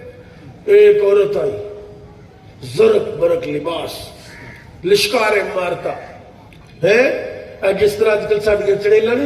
ایک عورت آئی زرق برق لباس لشکاریں مارتا ہے جس طرح آج کل ساڑھے چڑیلا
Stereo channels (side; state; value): both; identical; correlation 1.00